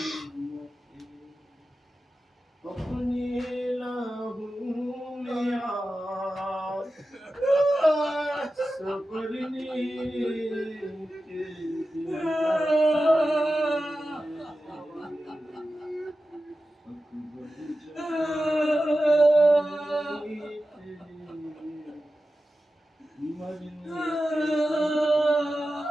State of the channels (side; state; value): both; normal; correlation 0.93